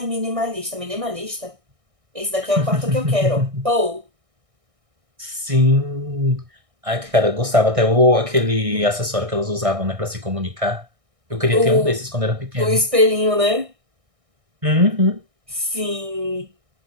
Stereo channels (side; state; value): left; late; 1.6 ms